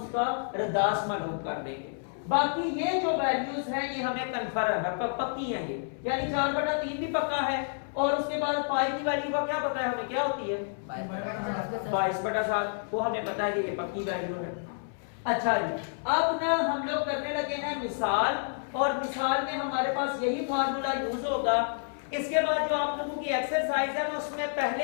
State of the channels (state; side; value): silent; right; 58 dB below the other